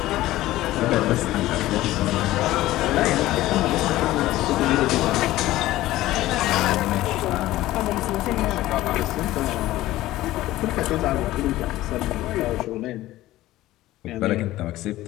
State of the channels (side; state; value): right; quieter; 16.1 dB